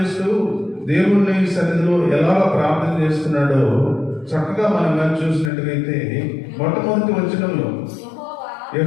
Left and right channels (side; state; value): right; drops out; at 5.5 s